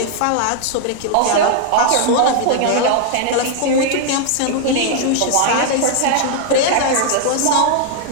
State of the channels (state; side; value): different; both; correlation 0.00